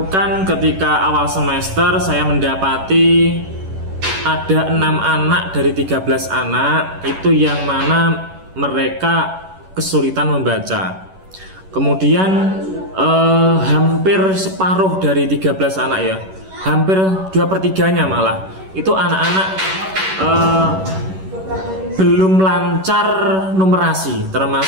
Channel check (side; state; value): left; late; 11 ms